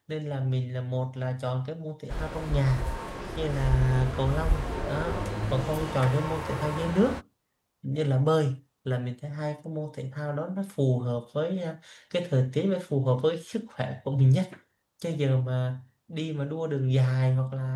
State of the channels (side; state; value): both; identical; correlation 1.00